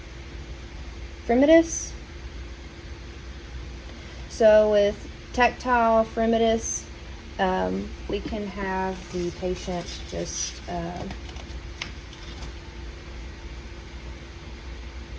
fremitus. So with tactile fremitus, we can have the patient just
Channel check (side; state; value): both; identical; correlation 1.00